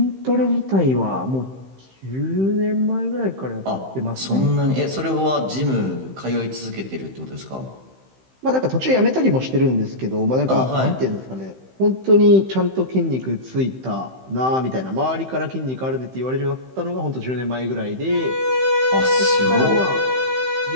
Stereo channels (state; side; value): late; left; 15 ms